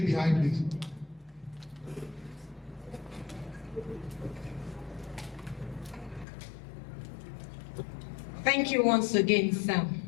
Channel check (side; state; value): right; drops out; at 6.2 s